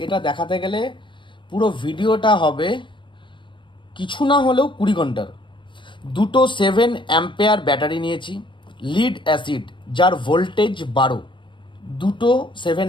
এটা দেখাতে গেলে পুরো ভিডিওটা হবে কিছু না হলেও 20 ঘন্টার। দুটো 7 অ্যাম্পেয়ার ব্যাটারি নিয়েছি, লিড অ্যাসিড যার ভোল্টেজ 12, দুটো 7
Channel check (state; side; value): late; right; 0.24 ms